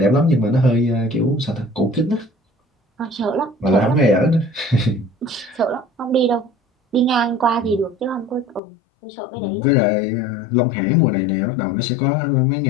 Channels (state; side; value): drops out; right; at 8.6 s